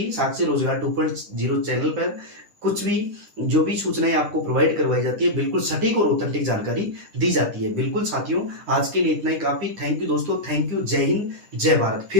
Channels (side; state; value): left; late; 9.9 ms